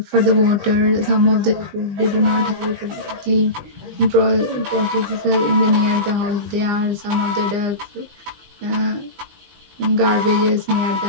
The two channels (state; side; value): late; left; 20 ms